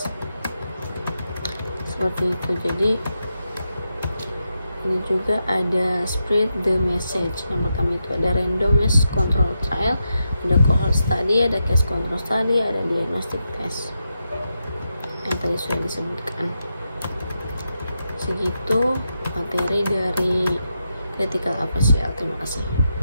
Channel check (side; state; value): both; inverted; correlation -0.86